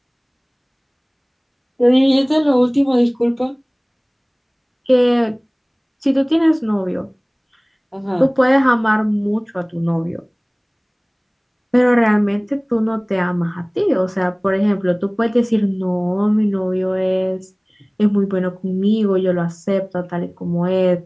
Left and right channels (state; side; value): identical; both; correlation 1.00